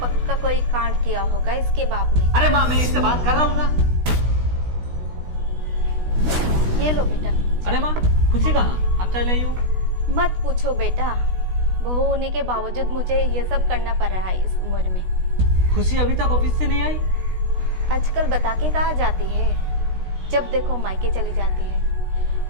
पक्का कोई कांड किया होगा इसके बाप ने। अरे माँ, मैं इससे बात कर रहा हूँ ना। ये लो बेटा। अरे माँ, खुशी कहाँ? आप चले आई हो। मत पूछो बेटा, बहू होने के बावजूद मुझे ये सब करना पड़ रहा है इस उम्र में। खुशी अभी तक ऑफिस से नहीं आई? आजकल बता के कहाँ जाती है, जब देखो मायके चली जाती है।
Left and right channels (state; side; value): late; left; 16 ms